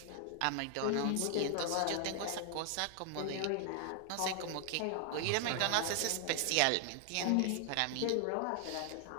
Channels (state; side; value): different; both; correlation 0.00